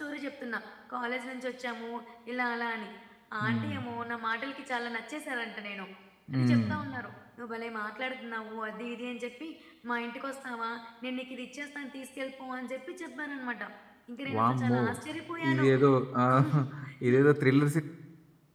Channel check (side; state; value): both; identical; correlation 1.00